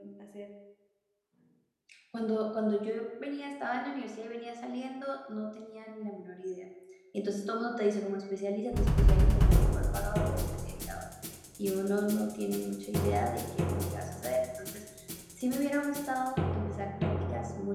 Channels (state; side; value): identical; both; correlation 1.00